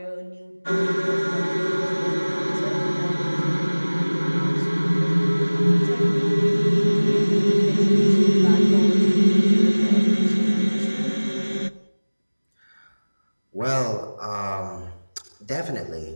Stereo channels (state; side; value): inverted; both; correlation -1.00